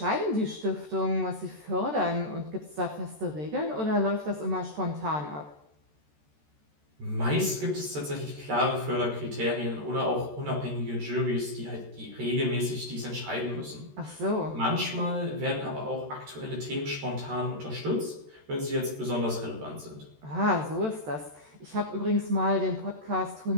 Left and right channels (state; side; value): late; left; 13 ms